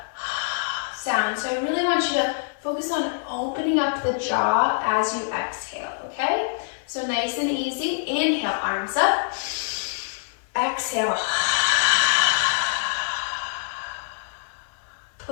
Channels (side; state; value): right; silent; 62 dB below the other